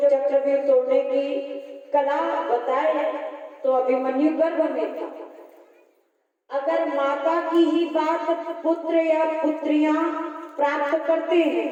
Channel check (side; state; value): both; identical; correlation 1.00